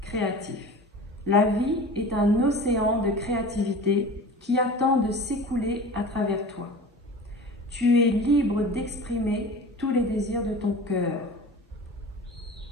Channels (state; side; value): normal; both; correlation 0.37